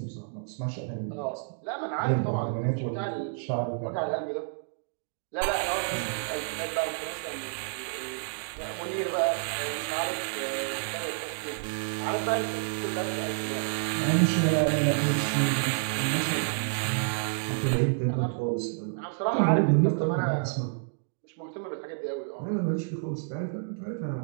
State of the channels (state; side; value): silent; left; digital silence